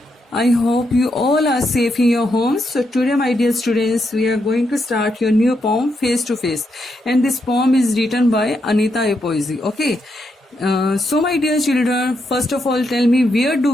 I hope you all are safe in your homes. So today, my dear students, we are going to start your new poem, Face to Face. And this poem is written by Anita A. Poesy. Okay. So my dear children, first of all, tell me, where do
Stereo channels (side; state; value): both; normal; correlation 0.81